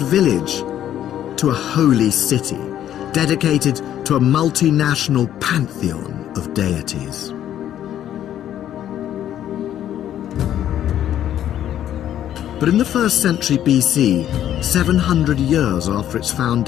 to a holy city, dedicated to a multinational pantheon of deities. But in the 1st century BC, 700 years after its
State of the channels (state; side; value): quieter; right; 11.2 dB